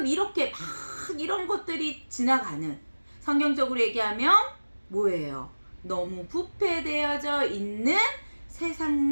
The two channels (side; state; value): both; inverted; correlation -1.00